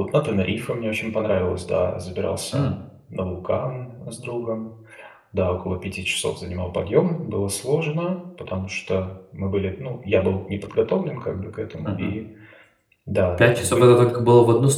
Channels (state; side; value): identical; both; correlation 1.00